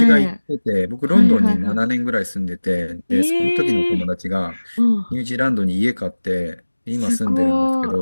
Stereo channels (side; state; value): both; inverted; correlation -1.00